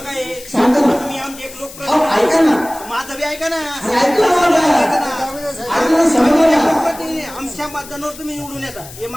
आहे? सांगा ना. तुम्ही आमचे एक लोक अहो, ऐका ना. माझं बी ऐका ना. अरे ऐका ना मला. ऐका ना, समजा ना. आमच्या मतदानावर तुम्ही निवडून येता हे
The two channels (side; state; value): left; noise; hiss, 16 dB below the sound